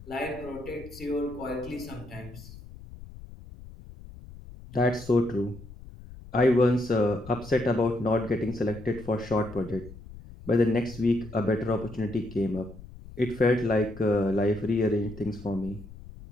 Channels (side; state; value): left; noise; rumble, 16 dB below the sound